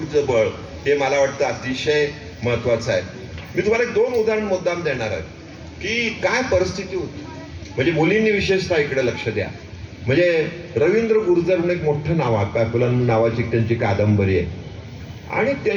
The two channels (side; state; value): both; identical; correlation 1.00